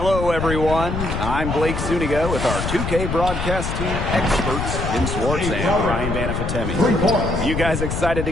everyone. I'm Blake Zuniga with our 2K broadcast team experts, Tim Swartz and Ryan Banafitemi. You guys excited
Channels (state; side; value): noise; left; rumble, 3 dB below the sound